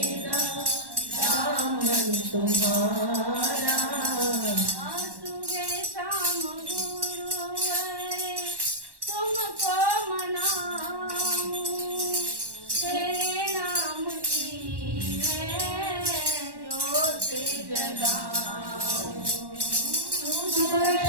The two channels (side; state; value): left; late; 1.1 ms